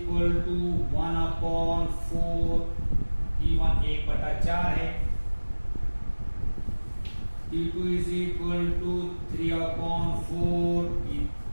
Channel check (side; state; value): both; inverted; correlation -1.00